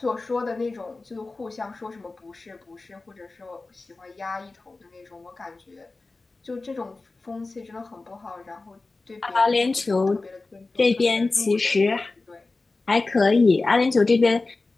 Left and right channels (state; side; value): quieter; right; 3.5 dB